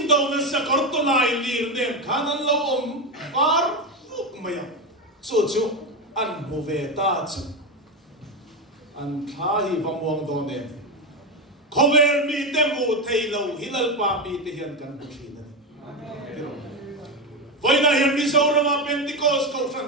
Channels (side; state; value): both; normal; correlation 0.13